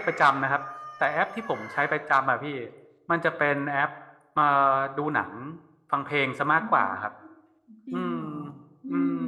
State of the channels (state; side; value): identical; both; correlation 1.00